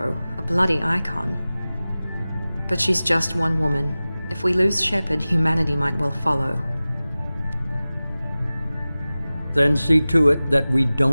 a bloody icon. But she's just one woman. If we lose Shepard, humanity might well follow. Then see to it that we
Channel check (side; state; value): both; inverted; correlation -0.97